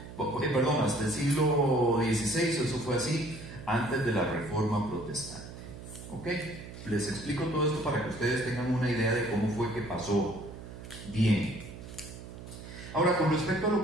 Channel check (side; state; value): right; noise; hum, 13 dB below the sound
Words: hasta el siglo XVI, eso fue así, antes de la Reforma Protestante. ¿Ok? Les explico todo esto para que ustedes tengan una idea de cómo fue que pasó. Bien. Ahora, con respecto a